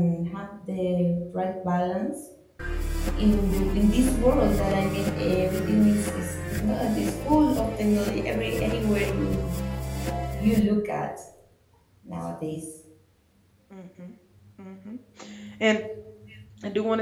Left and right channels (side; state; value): both; identical; correlation 1.00